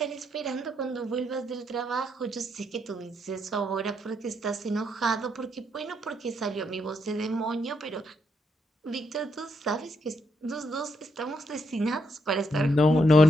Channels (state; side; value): normal; both; correlation 0.78